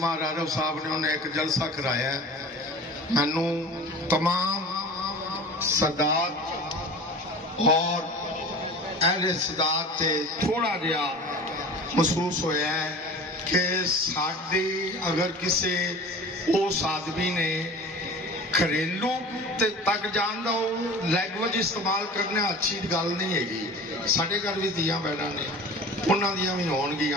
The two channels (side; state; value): both; normal; correlation 0.38